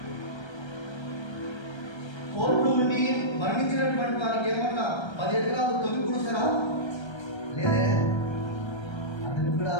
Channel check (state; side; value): late; right; 1.3 ms